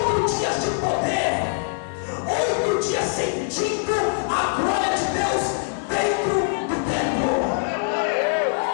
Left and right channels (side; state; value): right; silent; digital silence